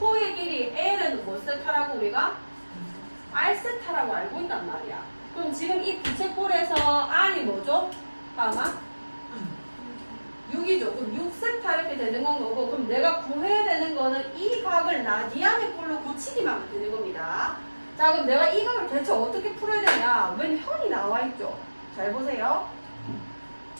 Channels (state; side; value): inverted; both; correlation -1.00